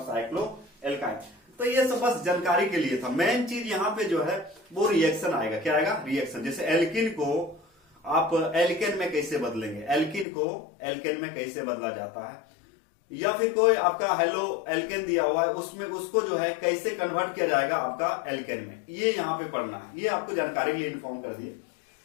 साइक्लो एल्काइन। तो ये सब बस जानकारी के लिए था। मेन चीज यहाँ पे जो है वो रिएक्शन आएगा। क्या आएगा? रिएक्शन। जैसे एल्किन को आप एल्केन में कैसे बदलेंगे, एल्किन को एल्केन में कैसे बदला जाता है, या फिर कोई आपका हेलो एल्केन दिया हुआ है उसमें उसको जो है कैसे कन्वर्ट किया जाएगा आपका एल्केन में, ये यहाँ पे पढ़ना है। ये आपको जानकारी के लिए इन्फॉर्म कर दिए।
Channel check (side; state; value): right; drops out; at 10.2 s